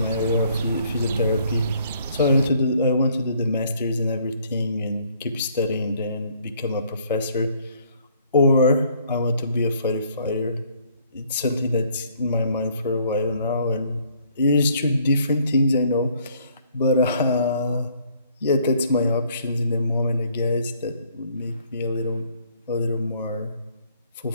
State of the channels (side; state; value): both; inverted; correlation -0.63